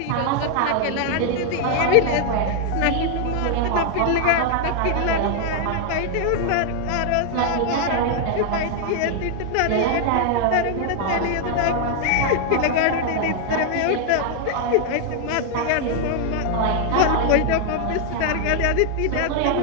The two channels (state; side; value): different; both; correlation 0.00